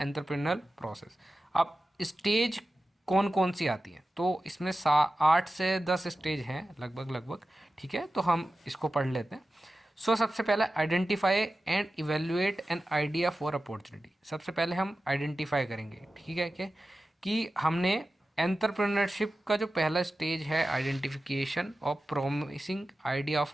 process. अब स्टेज कौन कौन सी आती हैं, तो इसमें 8 से 10 स्टेज हैं लगभग। ठीक है, तो हम इसको पढ़ लेते हैं। सो सबसे पहले identify and evaluate an idea for opportunity. सबसे पहले हम आइडेंटिफाई करेंगे, ठीक है, कि हमने एंटरप्रेन्योरशिप का जो पहला स्टेज है identification of promising idea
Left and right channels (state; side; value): normal; both; correlation 0.94